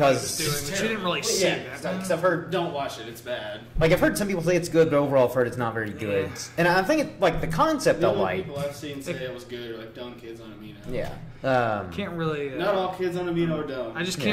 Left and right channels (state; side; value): identical; both; correlation 1.00